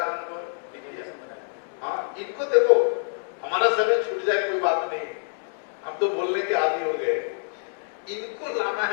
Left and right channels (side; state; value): right; silent; 61 dB below the other